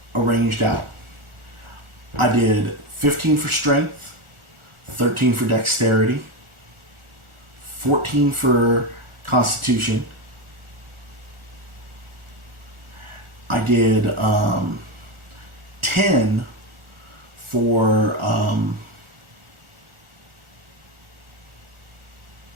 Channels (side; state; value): left; late; 1.4 ms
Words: arranged out. I did 15 for strength, 13 for dexterity, 14 for constitution. I did 10 for